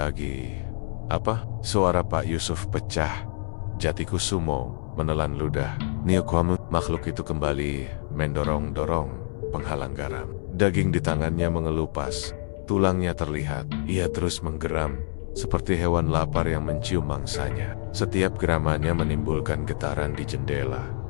apa? Suara Pak Yusuf pecah. Jati Kusumo menelan ludah. Niokomu, makhluk itu kembali mendorong-dorong penghalang garam. Daging di tangannya mengelupas. Tulangnya terlihat. Ia terus menggeram seperti hewan lapar yang mencium mangsanya. Setiap geramannya menimbulkan getaran di jendela.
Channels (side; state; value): right; silent; 61 dB below the other